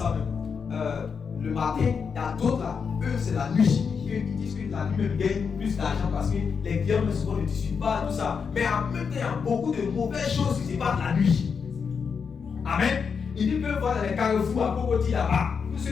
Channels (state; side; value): quieter; right; 6.0 dB